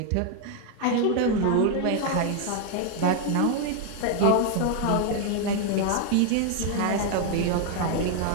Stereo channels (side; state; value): both; different; correlation 0.00